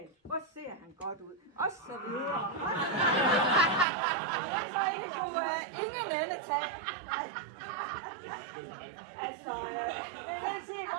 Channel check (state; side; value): drops out; left; at 3.9 s